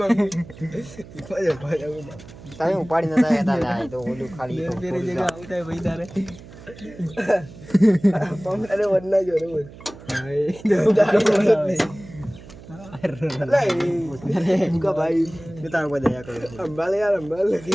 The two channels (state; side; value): noise; right; hum, 18 dB below the sound